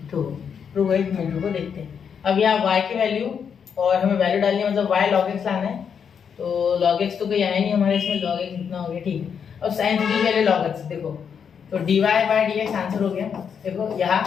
तो एक मिनट को देखते हैं। अब यहाँ y की वैल्यू, और हमें वैल्यू डालनी है, मतलब y log x लाना है, तो log x तो कोई आया नहीं हमारे इसमें, log x इतना हो गया, ठीक है। अब sin 3t पहले log x, देखो तो dy बाय dx आंसर हो गया, देखो यहाँ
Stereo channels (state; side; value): quieter; right; 7.2 dB